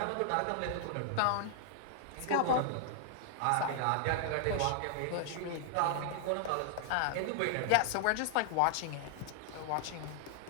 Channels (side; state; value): both; different; correlation -0.01